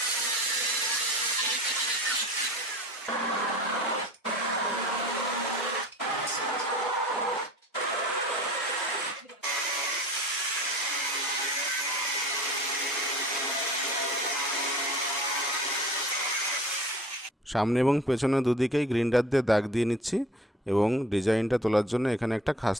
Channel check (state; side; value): normal; both; correlation 0.43